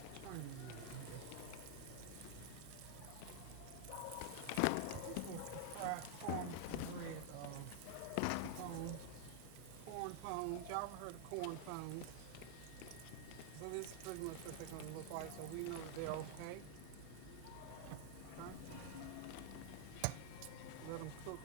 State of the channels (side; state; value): both; different; correlation 0.00